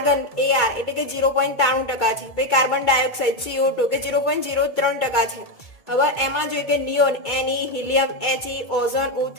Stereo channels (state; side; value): late; right; 2.2 ms